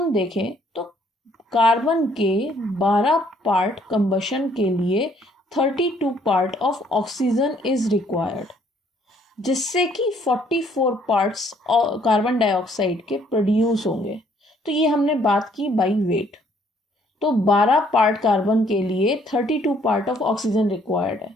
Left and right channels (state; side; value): normal; both; correlation 0.64